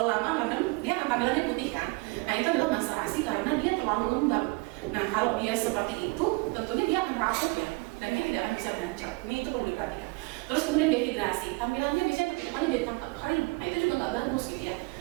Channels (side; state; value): left; quieter; 28.3 dB